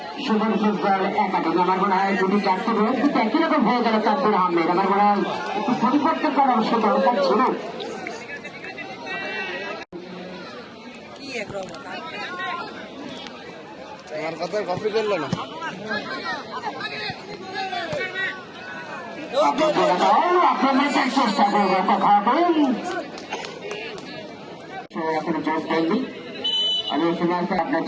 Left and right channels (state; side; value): identical; both; correlation 1.00